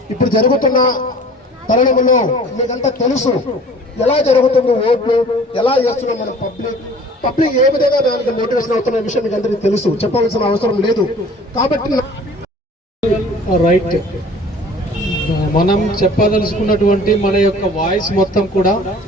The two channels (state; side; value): normal; both; correlation 0.48